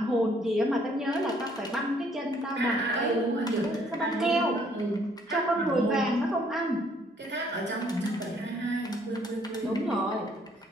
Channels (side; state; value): both; normal; correlation 0.64